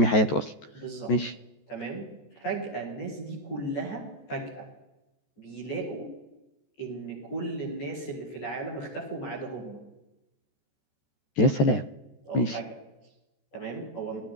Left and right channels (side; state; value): right; late; 14 ms